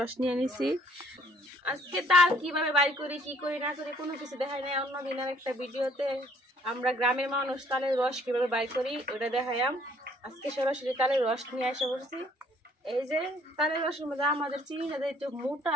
নিয়ে নিছি। আজকে তাল কিভাবে বাইর করি, কি করি না করি কোনো কিছু দেখাই নাই। অন্য দিনের একটা ভিডিওতে আমরা গ্রামের মানুষ তালের রস কিভাবে বাইর করি ওটা দেখাইলাম। আজকে সরাসরি তালের রস নিয়ে এসে পড়ছি। এই যে তালের রসের মধ্যে আমাদের চিনিটা একটু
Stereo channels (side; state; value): both; normal; correlation 0.60